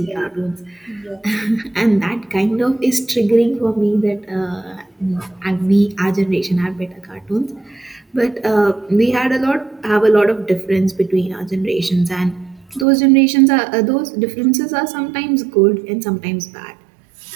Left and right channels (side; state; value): left; drops out; at 12.9 s